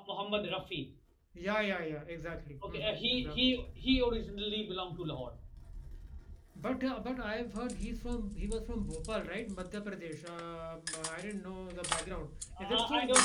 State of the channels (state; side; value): identical; both; correlation 1.00